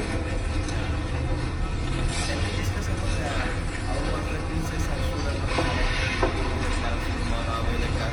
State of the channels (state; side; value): identical; both; correlation 1.00